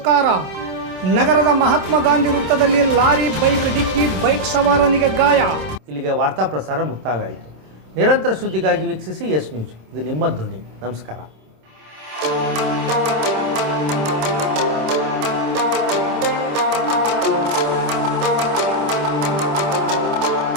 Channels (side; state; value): left; late; 26 ms